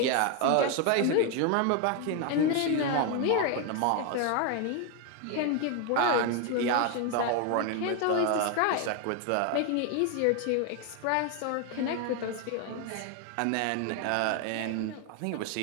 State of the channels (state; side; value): different; both; correlation 0.01